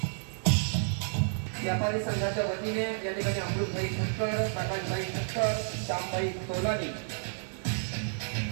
व्यापारी संघाच्या वतीने या ठिकाणी अमृतभाई ठक्कर, प्रकाशभाई ठक्कर, श्यामभाई तोलानी,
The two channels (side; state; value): left; silent; digital silence